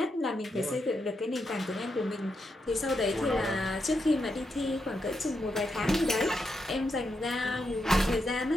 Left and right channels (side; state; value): both; normal; correlation 0.83